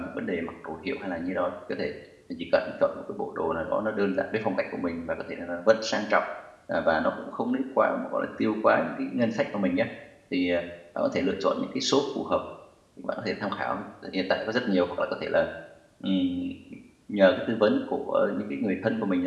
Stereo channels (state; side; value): identical; both; correlation 1.00